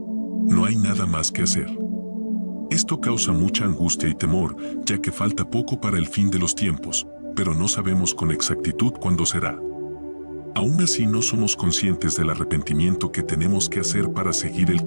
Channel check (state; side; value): inverted; both; correlation -1.00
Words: No hay nada más que hacer. Esto causa mucha angustia y temor, ya que falta poco para el fin de los tiempos, pero no sabemos con exactitud cuándo será. Aún así no somos conscientes del arrepentimiento que tenemos que hacer para seguir el